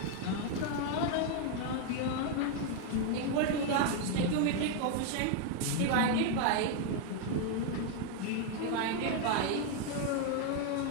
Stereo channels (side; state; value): both; different; correlation 0.00